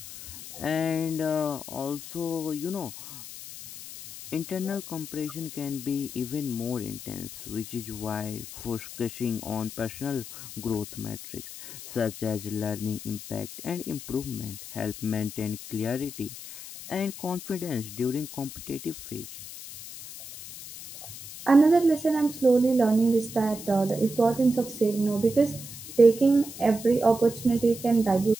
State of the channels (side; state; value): left; noise; hiss, 12 dB below the sound